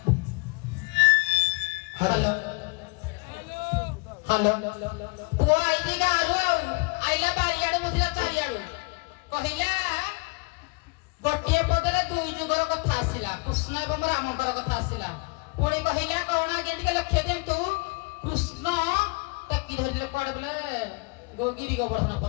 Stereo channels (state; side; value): quieter; right; 29.7 dB